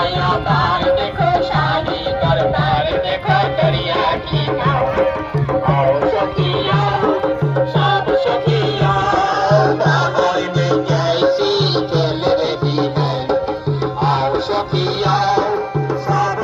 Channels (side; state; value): both; identical; correlation 1.00